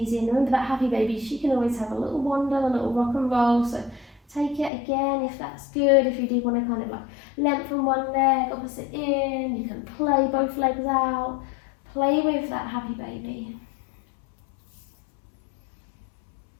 in. Remember that happy baby, she can always have a little wander, a little rock and roll. So take it again if that's good. If you do want to kind of like lengthen one leg, opposite in, you can play both legs out. Play with that happy baby.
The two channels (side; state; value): right; drops out; at 4.7 s